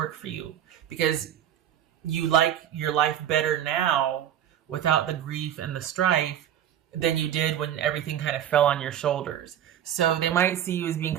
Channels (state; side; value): quieter; left; 10.5 dB